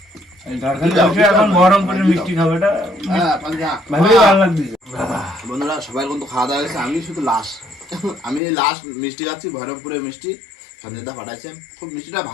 এখন বহরমপুরের মিষ্টি খাবে, এটা হ্যাঁ পাঞ্জা ভালোই ভালো লাগছে। বন্ধুরা সবাই কিন্তু খাওয়া দাওয়া গেছে, আমি শুধু লাস্ট, আমি লাস্ট মিষ্টি খাচ্ছি, বহরমপুরের মিষ্টি সঞ্জয়দা পাঠাইছে। খুব মিষ্টিটা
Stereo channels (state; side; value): drops out; right; at 8.4 s